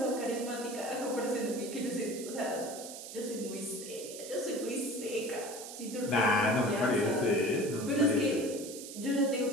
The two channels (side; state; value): right; noise; hiss, 11 dB below the sound